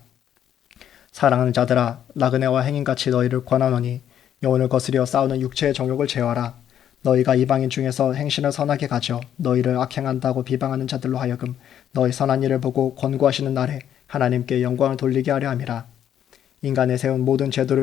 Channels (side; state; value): right; quieter; 10.0 dB